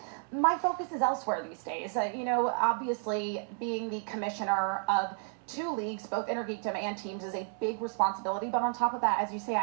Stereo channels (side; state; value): left; silent; 57 dB below the other